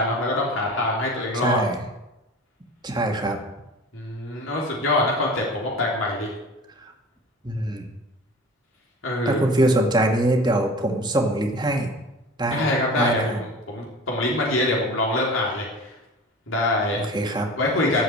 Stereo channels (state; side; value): normal; both; correlation 0.38